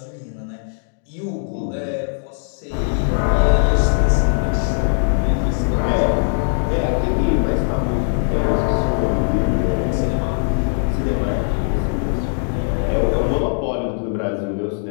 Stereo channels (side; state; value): right; silent; digital silence